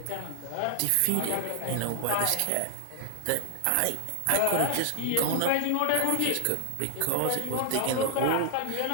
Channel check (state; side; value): different; both; correlation 0.00